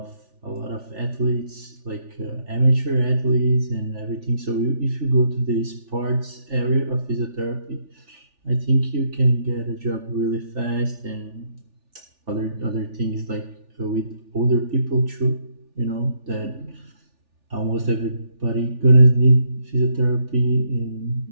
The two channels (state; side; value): late; left; 3.4 ms